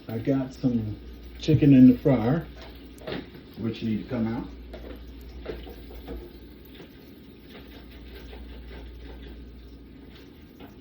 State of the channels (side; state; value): both; identical; correlation 1.00